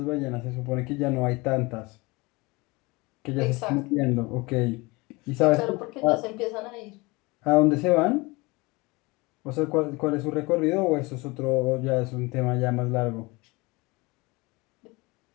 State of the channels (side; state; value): right; quieter; 24.3 dB